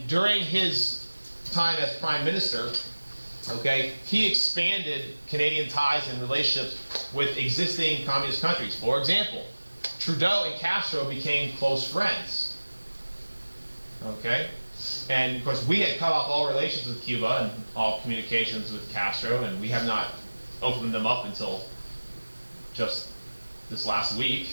during his time as Prime Minister, okay, he expanded Canadian ties and relationships with existing communist countries. For example, Trudeau and Castro became close friends. Okay? And of course, we had cut off all relations with Cuba and all communications with Castro, and we have not opened them up until just this last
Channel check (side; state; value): both; inverted; correlation -1.00